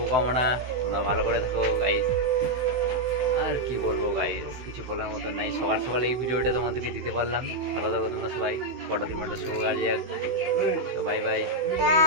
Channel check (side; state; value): left; late; 16 ms